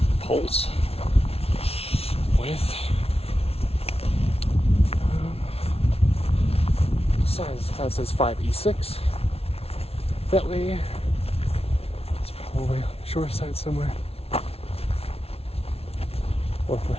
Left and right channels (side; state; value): right; late; 0.29 ms